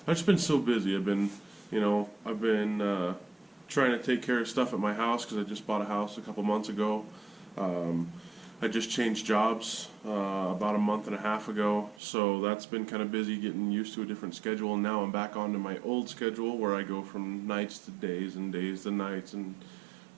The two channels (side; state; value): left; drops out; at 12.0 s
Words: I've just been so busy. I've been trying to take care of stuff at my house because I just bought a house a couple months ago. I just changed jobs about a month and a half ago, so that's been kind of busy getting used to a different schedule, and now I'm back onto my old schedule where I go from nights to days and days to nights and